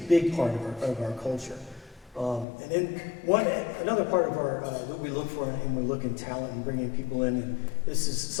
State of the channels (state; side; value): drops out; right; at 2.5 s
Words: big part of our culture. And then another part of our that we look for, and we look in talent and bringing people in, and this is,